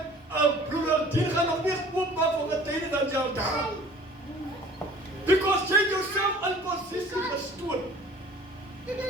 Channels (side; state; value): both; normal; correlation 0.48